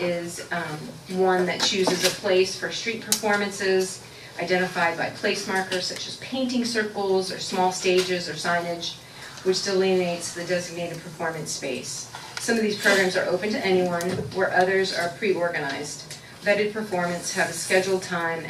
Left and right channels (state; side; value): identical; both; correlation 1.00